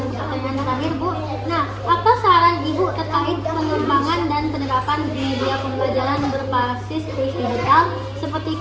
ke pertanyaan terakhir, Bu. Nah, apa saran Ibu terkait pengembangan dan penerapan media pembelajaran berbasis kuis digital seperti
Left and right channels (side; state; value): both; identical; correlation 1.00